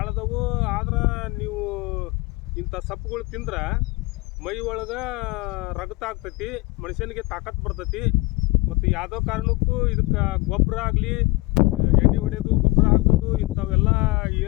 ಆದ್ರೆ ನೀವು ಇಂಥ ಸಪ್ಪುಗಳು ತಿಂದ್ರೆ ಮೈ ಒಳಗೆ ರಗತ ಆಗ್ತೈತಿ, ಮನುಷ್ಯನಿಗೆ ತಾಕತ್ತು ಬರ್ತೈತಿ. ಮತ್ತು ಯಾವುದೋ ಕಾರಣಕ್ಕೂ ಇದಕ್ಕೆ ಗೊಬ್ಬರ ಆಗಲಿ, ಎಣ್ಣೆ ಹೊಡೆಯೋದು, ಗೊಬ್ಬರ ಹಾಕೋದು ಇಂಥವೆಲ್ಲ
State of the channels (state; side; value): quieter; right; 23.2 dB